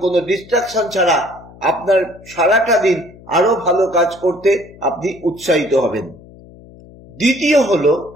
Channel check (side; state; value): left; noise; hum, 22 dB below the sound